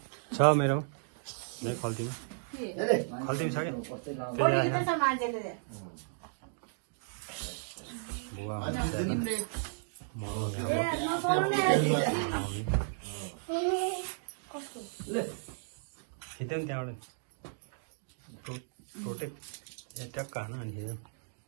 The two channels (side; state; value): left; silent; digital silence